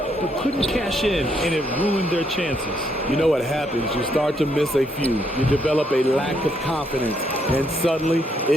but couldn't cash in, and it ruined their chances. You know what happens? You start to miss a few. You develop a lack of confidence, and suddenly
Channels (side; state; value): both; normal; correlation 0.74